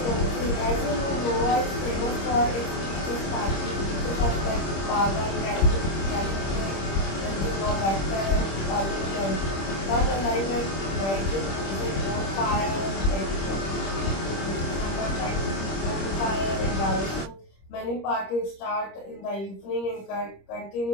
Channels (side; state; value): right; late; 26 ms